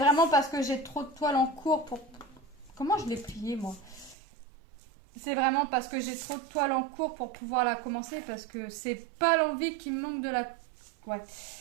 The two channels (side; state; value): left; drops out; at 4.2 s